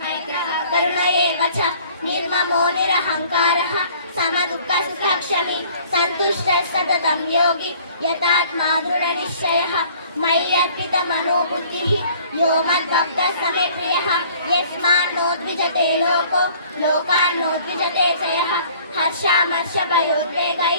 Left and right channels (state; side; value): inverted; both; correlation -0.54